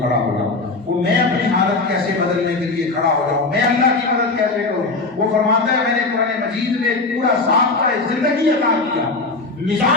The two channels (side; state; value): right; quieter; 3.5 dB